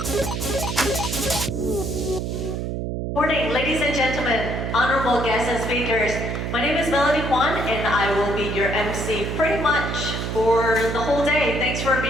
ladies and gentlemen, honorable guests and speakers. My name is Kwan, and I will be your MC pretty much for the whole day. Thanks for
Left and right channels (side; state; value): right; noise; hum, 3 dB below the sound